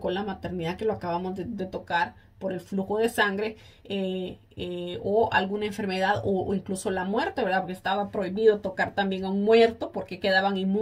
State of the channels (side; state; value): both; identical; correlation 1.00